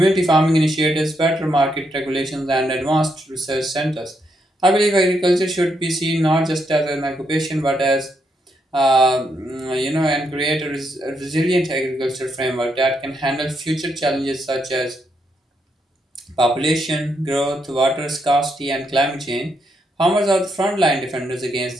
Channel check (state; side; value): normal; both; correlation 0.78